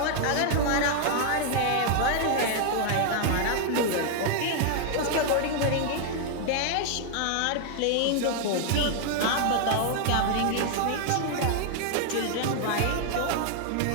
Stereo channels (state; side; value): different; both; correlation 0.00